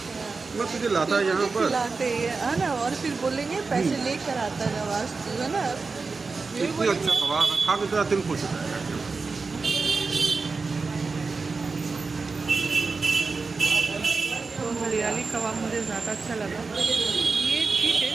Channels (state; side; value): quieter; left; 4.3 dB